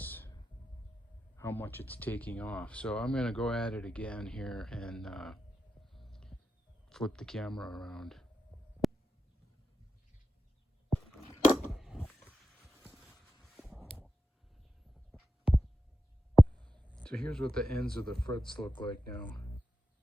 how much it's taking off. So I'm going to go at it again here and flip the camera around. So here's what the ends of the frets look like now.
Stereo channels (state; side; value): normal; both; correlation 0.91